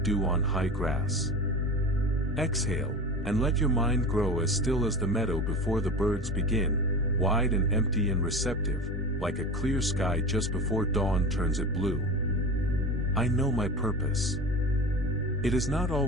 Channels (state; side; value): normal; both; correlation 0.30